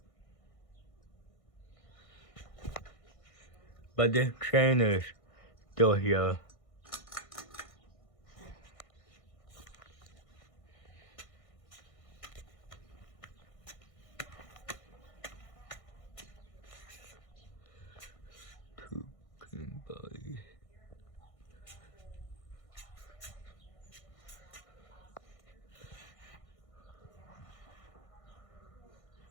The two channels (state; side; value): late; right; 1.6 ms